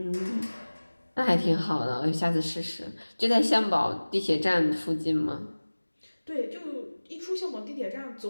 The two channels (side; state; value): both; inverted; correlation -1.00